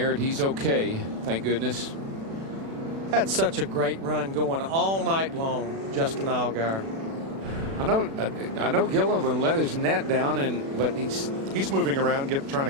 and he's okay, thank goodness. Had such a great run going all night long, Justin Allgaier. I know Gilliland let his net down, but he's moving around, trying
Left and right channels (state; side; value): late; left; 36 ms